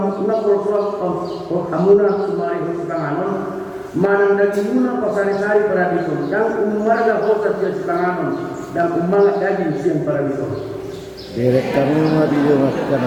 hamuna sumari hutanganon manang dagi una pasari-sari paradison dan umarga hosa sia sitanganon dan umangat daging siang paradison. Direk kami madiyo akan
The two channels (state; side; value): identical; both; correlation 1.00